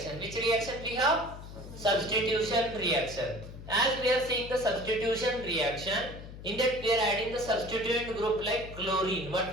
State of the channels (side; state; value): left; noise; hum, 13 dB below the sound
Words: Which reaction we have? Substitution reaction. As we are seeing the substitution reaction, in that we are adding the substituent group like chlorine. What